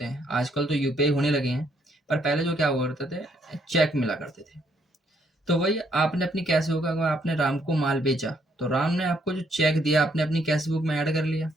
हैं। आजकल तो यूपीआई होने लगे हैं, पर पहले जो क्या हुआ करते थे, चेक मिला करते थे। तो वही आपने अपनी कैश बुक, अगर आपने राम को माल बेचा तो राम ने आपको जो चेक दिया आपने अपनी कैश बुक में ऐड कर लिया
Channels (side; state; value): both; normal; correlation 0.70